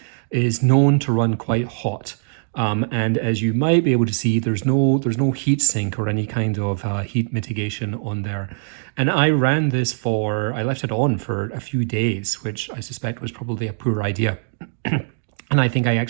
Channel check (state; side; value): silent; left; digital silence